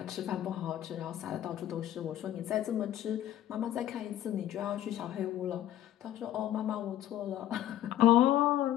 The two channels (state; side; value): quieter; right; 12.4 dB